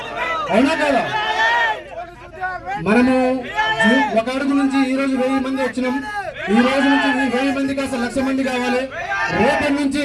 మనము ఒక అడుగు నుంచి ఈ రోజు 1000 మంది వచ్చినాం. ఈ రోజు నుంచి 1000 మంది కాస్త 1,00,000 మంది కావాలి. రేపటి నుంచి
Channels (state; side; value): identical; both; correlation 1.00